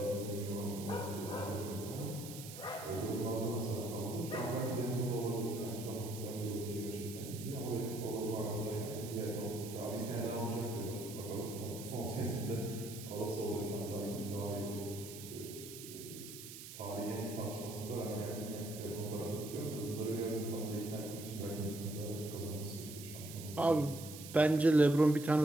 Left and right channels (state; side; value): noise; right; hiss, 12 dB below the sound